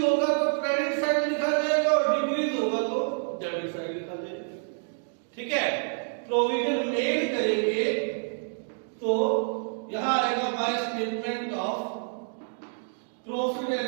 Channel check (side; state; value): left; silent; digital silence